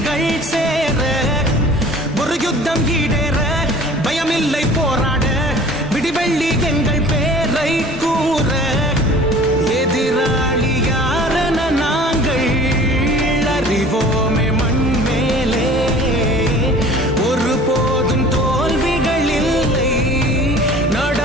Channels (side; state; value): both; normal; correlation 0.46